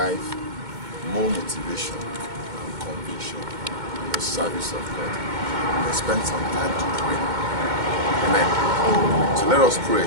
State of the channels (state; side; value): late; left; 2.2 ms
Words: more motivation and conviction in the service of God. And spend some time to pray. Amen. So let us pray